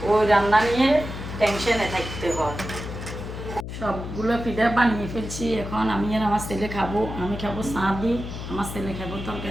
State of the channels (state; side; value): noise; left; hum, 8 dB below the sound